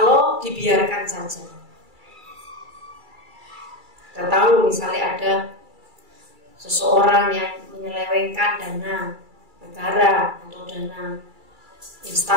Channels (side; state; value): left; late; 2.3 ms